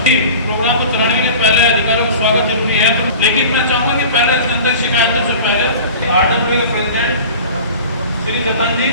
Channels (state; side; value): inverted; both; correlation -0.40